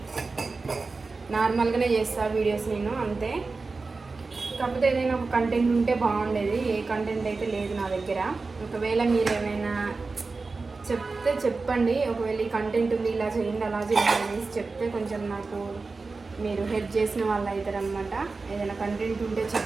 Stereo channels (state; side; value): quieter; left; 4.0 dB